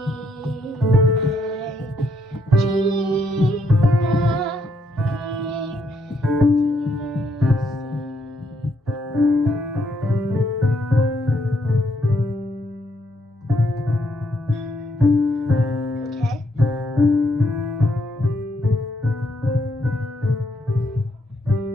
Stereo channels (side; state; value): both; normal; correlation 0.74